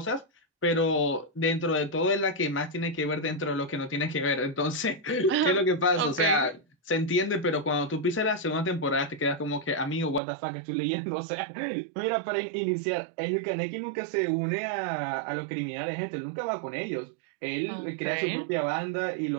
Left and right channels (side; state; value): left; drops out; at 10.2 s